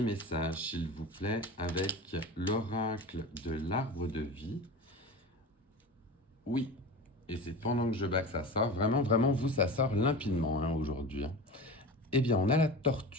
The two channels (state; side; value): normal; both; correlation 0.31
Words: message, s'il vous plaît, avec l'oracle de l'arbre de vie? Oui, et c'est pendant que je bats que ça sort. Vraiment, vraiment, vous, ça sort limpidement hein, aujourd'hui. Hein. Eh bien, on a la